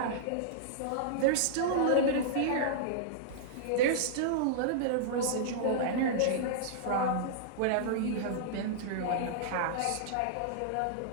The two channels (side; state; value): both; different; correlation -0.02